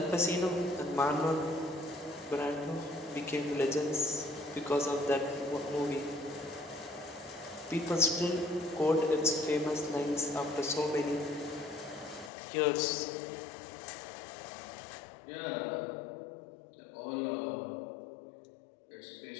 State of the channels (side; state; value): right; drops out; at 12.3 s